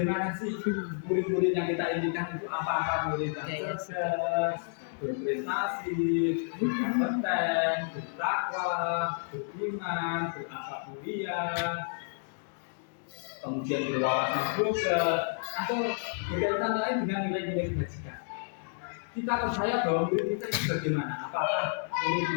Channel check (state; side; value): silent; right; digital silence